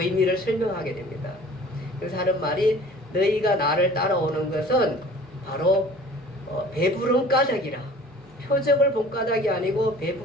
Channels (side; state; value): both; normal; correlation 0.47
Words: 의미를 설명하게 됩니다. 그래서 하는 말이 너희가 나를 따라오는 것은 바로 배부른 까닭이라. 표적을 본 까닭이 아니고